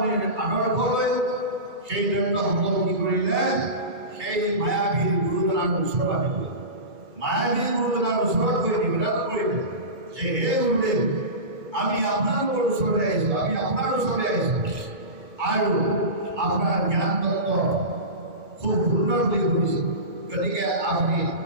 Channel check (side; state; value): left; late; 2.3 ms